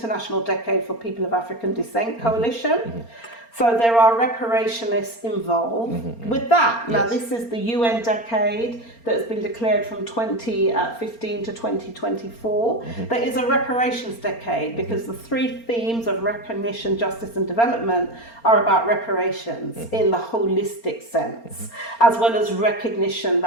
Decade for People of African Descent Coalition. So there are reparationists involved with that. Now, this is the UN decade that has been declared from 2015 to 2024. That is a reparations decade because the three themes of recognition, justice and development are about reparations in the holistic sense, as well as recognition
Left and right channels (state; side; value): late; right; 4.3 ms